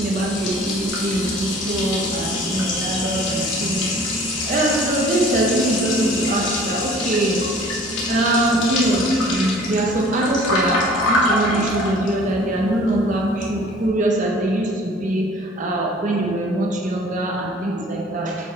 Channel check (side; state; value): both; normal; correlation 0.49